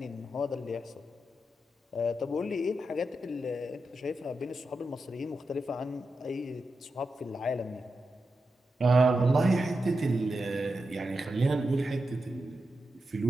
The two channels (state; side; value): normal; both; correlation 0.89